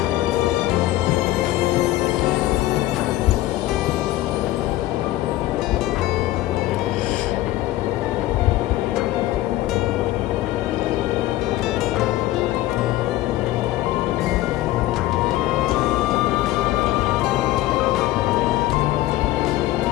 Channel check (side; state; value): right; quieter; 15.9 dB